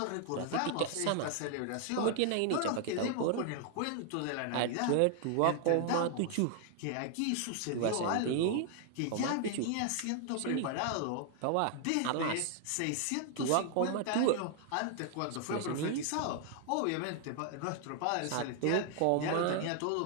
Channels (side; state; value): both; different; correlation 0.00